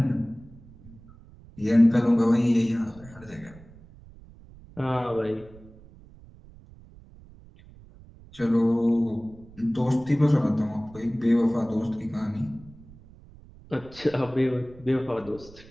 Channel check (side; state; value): right; noise; rumble, 22 dB below the sound